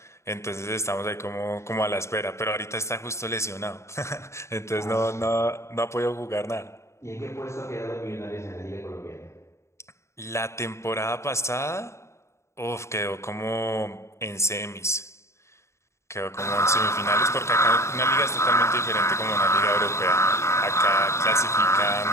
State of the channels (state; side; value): late; right; 0.14 ms